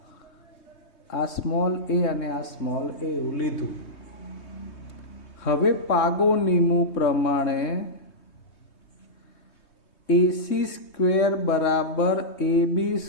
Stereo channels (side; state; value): right; late; 3.2 ms